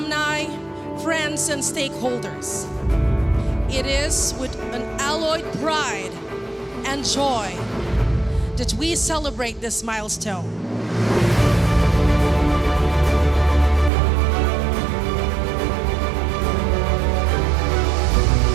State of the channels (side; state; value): left; drops out; at 13.9 s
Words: friends, and stakeholders. It is with an alloyed pride and joy that we celebrate this milestone.